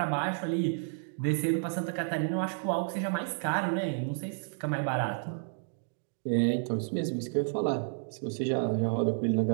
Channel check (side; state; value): left; silent; digital silence